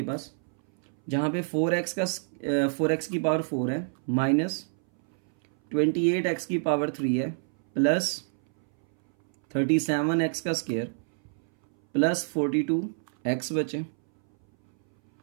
पास, जहां पे 4x की पावर 4 है, माइनस 28x की पावर 3 है, प्लस 37x का स्क्वायर, प्लस 42x बचे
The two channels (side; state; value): left; silent; 60 dB below the other